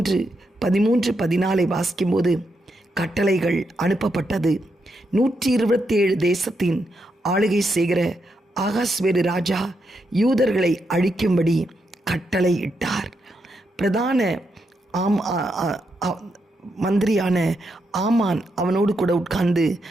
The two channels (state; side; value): normal; both; correlation 0.82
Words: வாசிக்கும்போது கட்டளைகள் அனுப்பப்பட்டது. 127 தேசத்தின் ஆளுகை செய்கிற ஆகாஸ்வேரு ராஜா யூதர்களை அழிக்கும்படி கட்டளை இட்டார். பிரதான மந்திரியான ஆமான் அவனோடு கூட உட்கார்ந்து